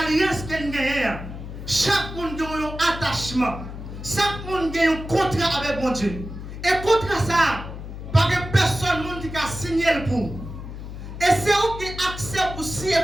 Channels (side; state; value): left; noise; hum, 10 dB below the sound